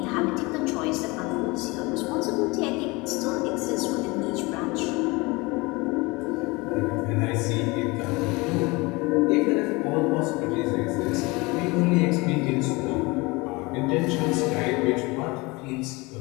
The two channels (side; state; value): right; quieter; 24.6 dB